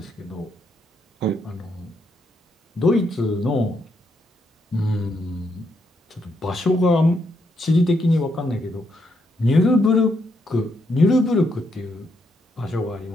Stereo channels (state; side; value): normal; both; correlation 0.78